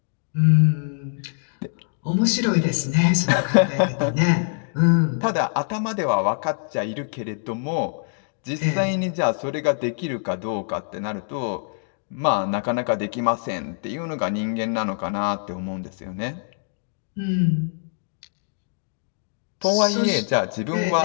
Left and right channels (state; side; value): silent; right; digital silence